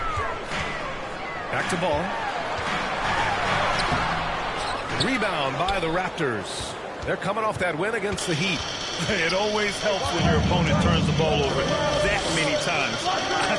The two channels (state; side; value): identical; both; correlation 1.00